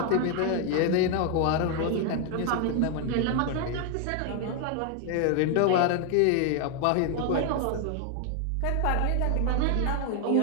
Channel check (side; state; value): both; different; correlation 0.00